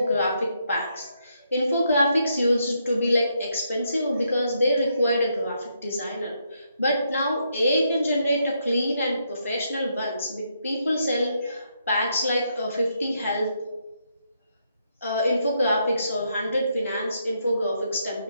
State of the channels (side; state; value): both; inverted; correlation -0.77